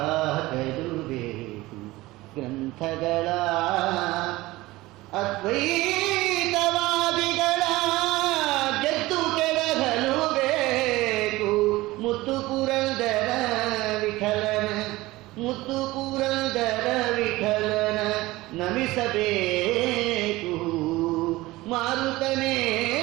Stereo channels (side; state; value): left; quieter; 19.3 dB